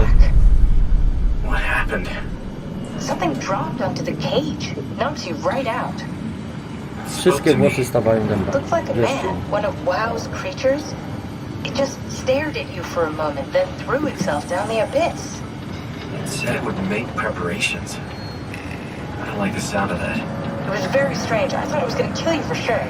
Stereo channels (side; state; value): both; identical; correlation 1.00